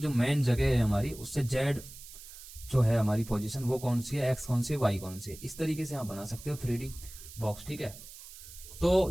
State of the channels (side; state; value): right; noise; hiss, 16 dB below the sound